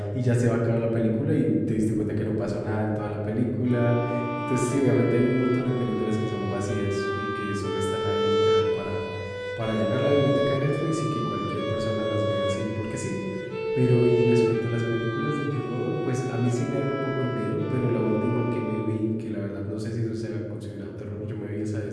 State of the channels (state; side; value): identical; both; correlation 1.00